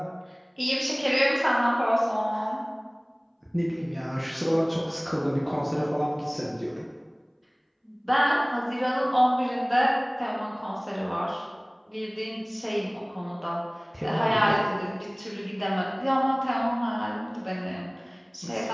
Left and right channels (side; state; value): both; identical; correlation 1.00